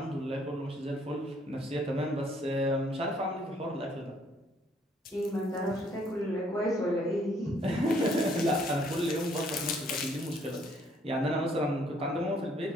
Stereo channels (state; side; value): normal; both; correlation 0.65